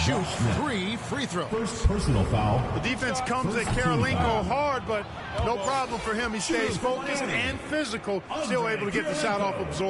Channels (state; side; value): identical; both; correlation 1.00